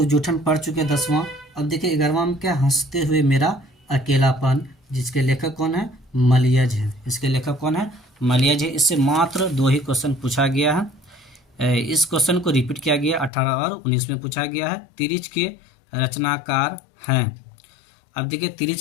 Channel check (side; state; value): right; drops out; at 13.3 s